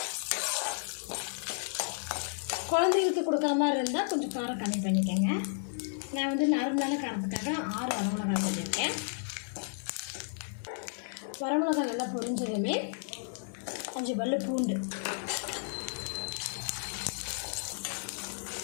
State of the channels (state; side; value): silent; right; digital silence